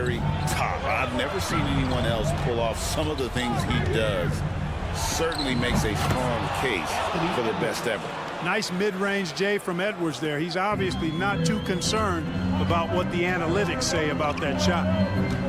top. I've never seen anyone else pull off some of the things he does. Certainly makes a strong case for the best ever. Nice mid-range J from Edwards there. He's obviously not too concerned about what the analytics say about that shot.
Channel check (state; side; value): identical; both; correlation 1.00